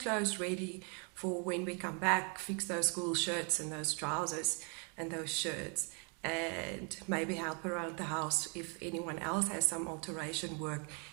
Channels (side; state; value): left; quieter; 37.6 dB